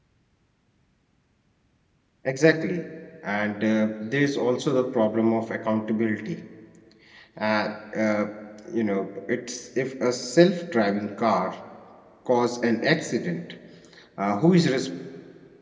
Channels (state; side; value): identical; both; correlation 1.00